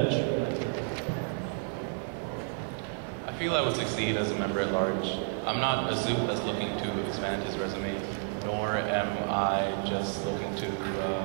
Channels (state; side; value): silent; left; 57 dB below the other